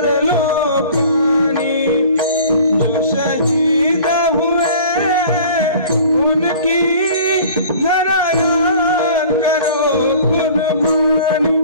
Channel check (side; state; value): both; inverted; correlation -0.46